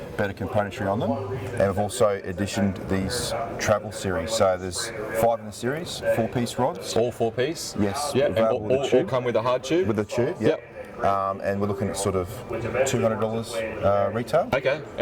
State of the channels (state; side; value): identical; both; correlation 1.00